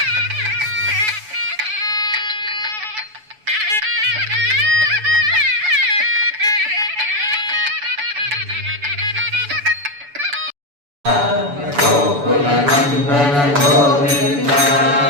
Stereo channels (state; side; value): late; left; 7.0 ms